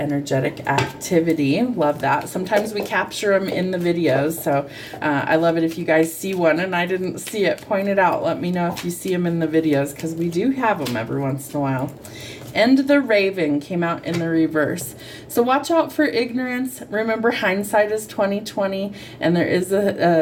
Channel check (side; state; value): both; identical; correlation 1.00